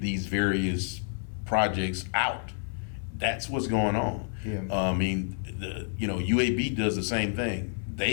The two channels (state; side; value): silent; right; 58 dB below the other